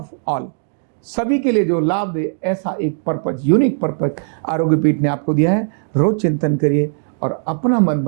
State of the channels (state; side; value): silent; left; digital silence